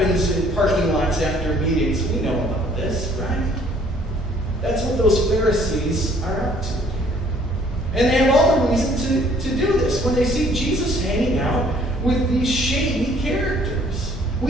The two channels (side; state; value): both; normal; correlation 0.59